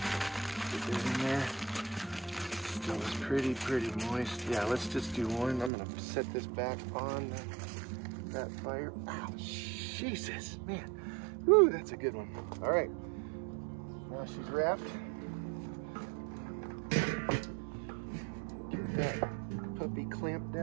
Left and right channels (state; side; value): drops out; left; at 5.7 s